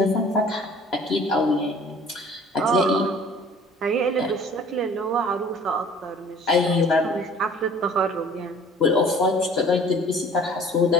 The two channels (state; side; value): normal; both; correlation 0.50